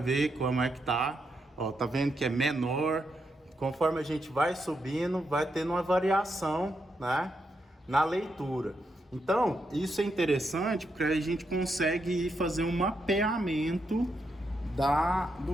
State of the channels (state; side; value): normal; both; correlation 0.82